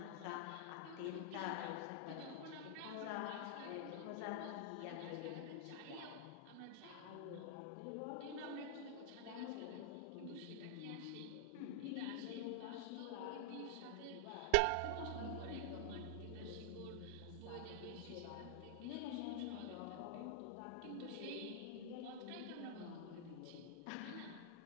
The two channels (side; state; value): both; different; correlation -0.01